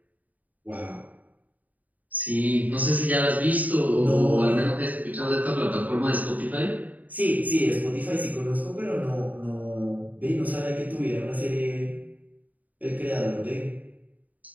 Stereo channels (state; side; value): late; left; 0.076 ms